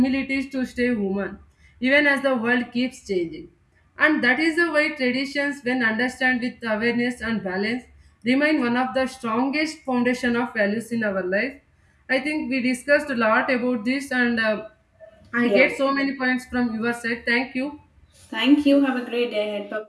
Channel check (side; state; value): both; identical; correlation 1.00